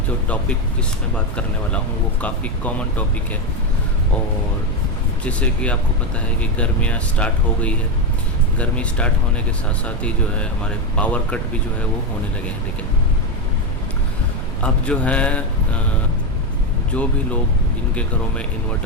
जो टॉपिक जिस मैं बात करने वाला हूँ वो काफ़ी कॉमन टॉपिक है। और जैसे कि आपको पता है कि गर्मियाँ स्टार्ट हो गई है। गर्मी स्टार्ट होने के साथ साथ ही जो है हमारे पावर कट भी जो है वो होने लगे हैं। ठीक है, अब जो है जो भी लोग जिनके घरों में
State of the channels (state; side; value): noise; right; rumble, 7 dB below the sound